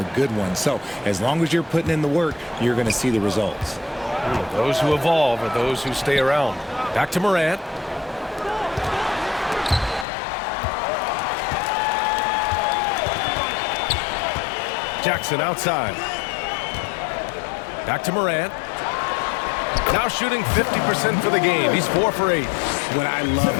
good one. So as long as you're putting in the work, you're going to see the results. Those who evolve are those who stay around. Back to Morant. Jackson outside. Back to Morant. Now shooting 50% for the game. He's 4 for 8. What I love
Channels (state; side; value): drops out; right; at 10.1 s